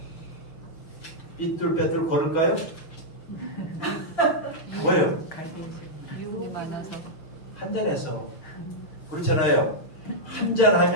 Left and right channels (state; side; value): late; right; 6.3 ms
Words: 삐뚤빼뚤 걸을까요? 왜요? 유혹이 많아서. 한잔해서. 그렇잖아요.